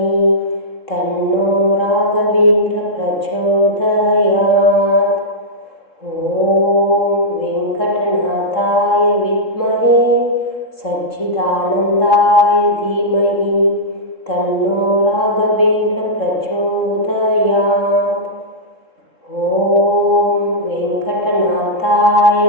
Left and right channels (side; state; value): right; late; 3.7 ms